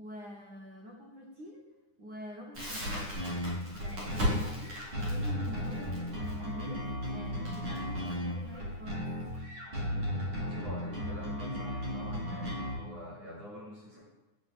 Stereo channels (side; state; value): left; late; 9.8 ms